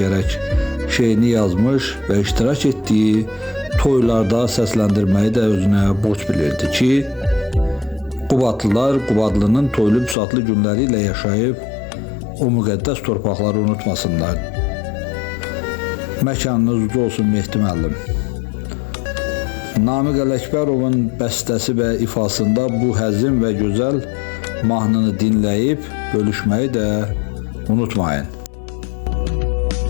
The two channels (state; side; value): drops out; right; at 10.2 s